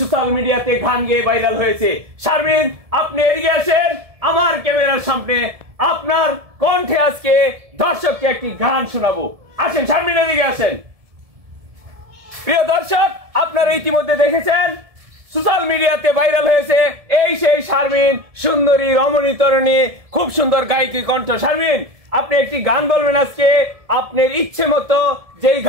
মিডিয়াতে গান গেয়ে ভাইরাল হয়েছে। শারমিন, আপনি এদিকে আসেন আমার ক্যামেরার সামনে। আপনার কণ্ঠে আজকে দর্শককে একটি গান শোনাবো। আসেন শারমিন, এদিকে আসেন। প্রিয় দর্শক, আপনারা ইতিমধ্যে দেখেছেন সোশ্যাল মিডিয়াতে ভাইরাল হয়েছে এই সেই শারমিন, সুন্দরী রমণী তরুণী, খুব সুন্দর গায়িকা কণ্ঠ। শারমিন, আপনি একটি গান বলবেন আজকে আপনার ইচ্ছে মতো, যেই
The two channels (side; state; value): left; late; 1.7 ms